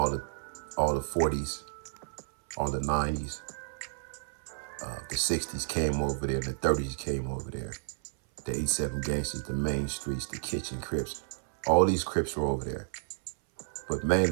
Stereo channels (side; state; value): left; silent; 57 dB below the other